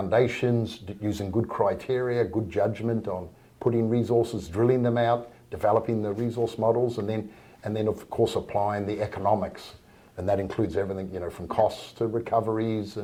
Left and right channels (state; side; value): identical; both; correlation 1.00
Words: using good criteria, good judgment on putting resources, drilling them out, developing the resource models, and then of course applying the economics. And that includes everything, from costs to recoveries